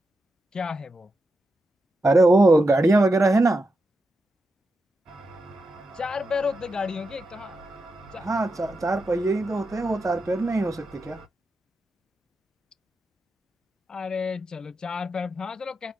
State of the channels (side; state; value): both; normal; correlation 0.87